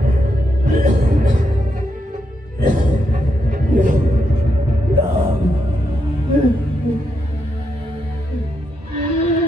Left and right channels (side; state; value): both; normal; correlation 0.81